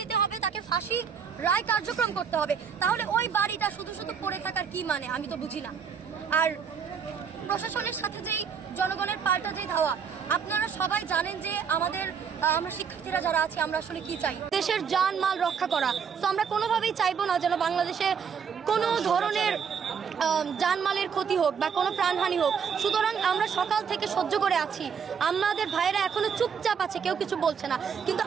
হবে, তাকে ফাঁসির রায় কার্যক্রম করতে হবে। তাহলে ওই বাড়িটা শুধু শুধু পড়ে থাকার কি মানে, আমি তো বুঝি না। আর প্রশাসনের সাথে যেই জনগণের পাল্টা যে ধাওয়া, আপনারা সবাই জানেন যে আমরা শিক্ষার্থীরা যারা আছি আমরা আসলে কি চাই, দেশের জানমাল রক্ষা করা। তো আমরা কোনোভাবেই চাইবো না যেন বাংলাদেশে কোনো ধরনের জানমালের ক্ষতি হোক বা কোনো প্রাণহানি হোক। সুতরাং আমরা সকাল থেকে সহ্য করে আছি, আমাদের ভাইয়েরা এখনো চুপচাপ আছে, কেউ কিছু বলছে না। কিন্তু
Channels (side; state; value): left; quieter; 6.8 dB